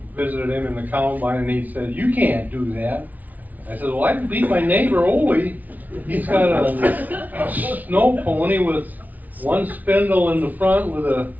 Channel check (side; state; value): left; late; 0.077 ms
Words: visited him in the combine, and he said, "You can't do that." I said, "Well, I can beat my neighbor Ole. He's got a snow pony with one spindle in the front with a